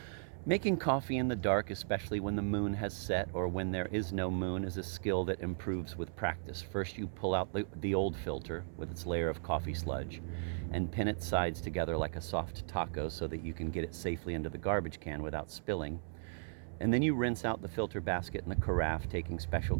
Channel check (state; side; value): silent; left; 54 dB below the other